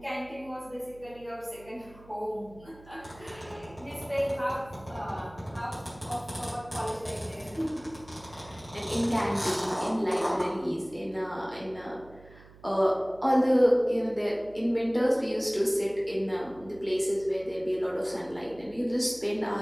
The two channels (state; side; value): noise; right; hum, 22 dB below the sound